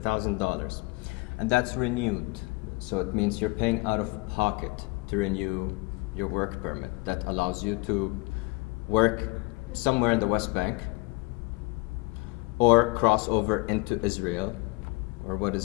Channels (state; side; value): quieter; right; 25.8 dB